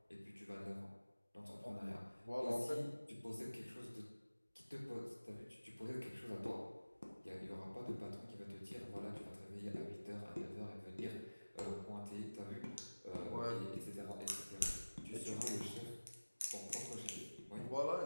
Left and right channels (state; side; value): inverted; both; correlation -1.00